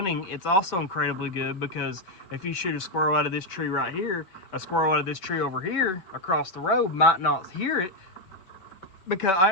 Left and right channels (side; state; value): right; late; 5.2 ms